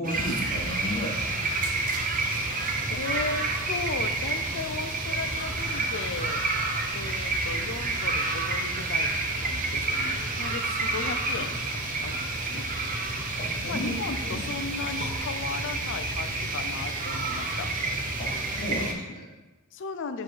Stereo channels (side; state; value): both; normal; correlation 0.24